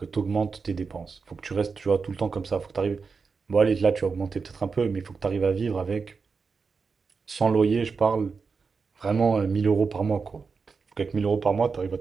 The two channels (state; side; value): quieter; left; 5.0 dB